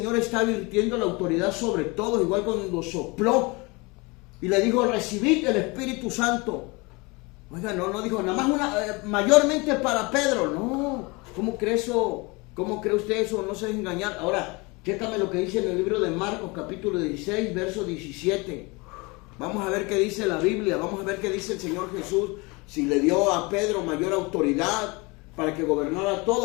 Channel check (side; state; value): right; quieter; 26.5 dB